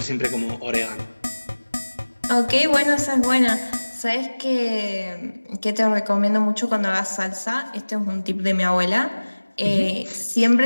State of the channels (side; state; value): both; inverted; correlation -1.00